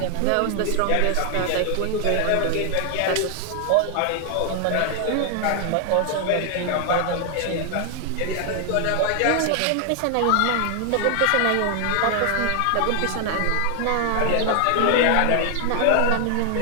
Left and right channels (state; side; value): different; both; correlation 0.00